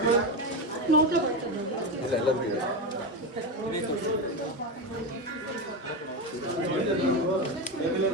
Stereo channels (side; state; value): both; normal; correlation 0.14